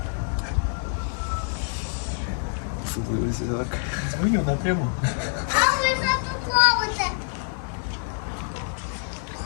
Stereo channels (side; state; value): right; silent; 61 dB below the other